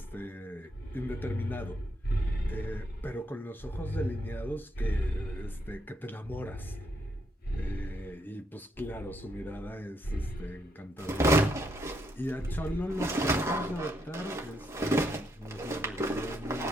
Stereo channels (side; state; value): both; normal; correlation 0.76